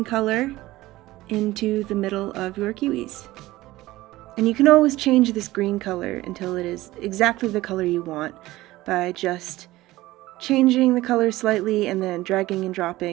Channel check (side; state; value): left; quieter; 17.6 dB